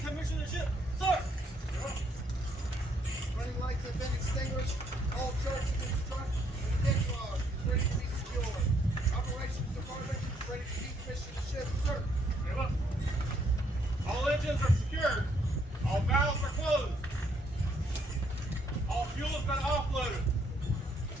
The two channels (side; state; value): both; normal; correlation 0.70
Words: the ship, sir. Running lights have been extinguished. All charts have been struck, and the deck log is ready to be secured. Operations department is ready to decommission the ship, sir. Very well. All engines are secured. All valves are closed. All fuel has been offloaded.